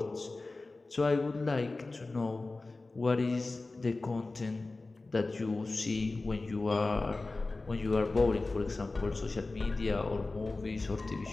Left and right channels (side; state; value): right; quieter; 3.3 dB